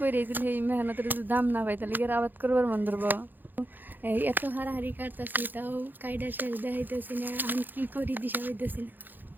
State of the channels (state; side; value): late; left; 0.089 ms